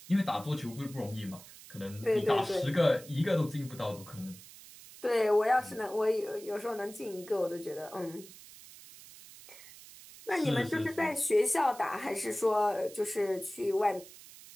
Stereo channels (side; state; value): right; noise; hiss, 18 dB below the sound